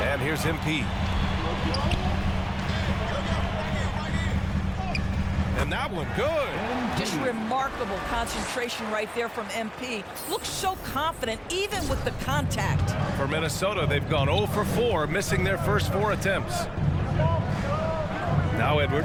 And here's MP. And that one good. Just remarkable concentration right there from MP. Looks so confident, even with the contact. For Minnesota, they've gone 0 for 4, missing their first 4 attempts. Now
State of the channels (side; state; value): both; identical; correlation 1.00